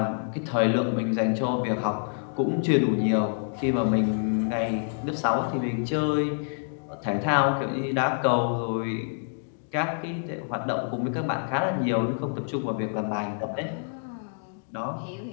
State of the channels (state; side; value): silent; right; digital silence